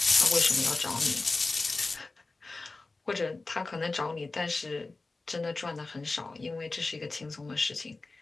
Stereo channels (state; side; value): quieter; right; 3.5 dB